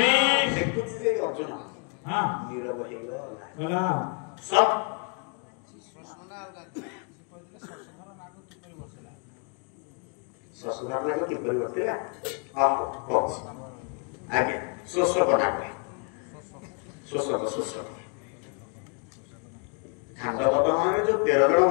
देखुछि जे अर्जुन हां नीरव हेगला सब ससुराल लागो कि परिवर्तन हां कोच आगे सोसो बना के सोसो खंड बाबा माने जो 13 जण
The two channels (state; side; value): quieter; right; 36.7 dB